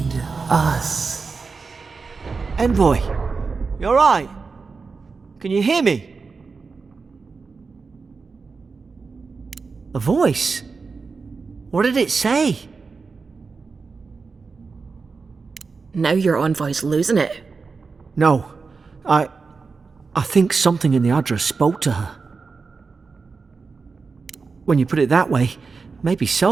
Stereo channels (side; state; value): left; quieter; 4.7 dB